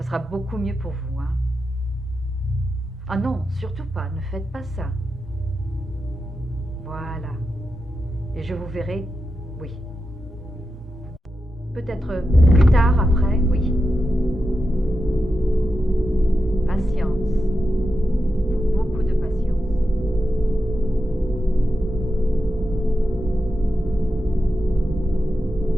beaucoup mieux pour vous, hein. Ah non, surtout pas, ne faites pas ça. Voilà. Et je vous verrai, oui. Peut-être plus tard, après, oui. Patience. Beaucoup de patience.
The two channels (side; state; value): both; normal; correlation 0.89